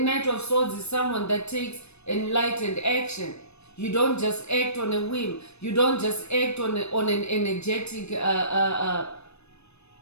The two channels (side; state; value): right; late; 0.80 ms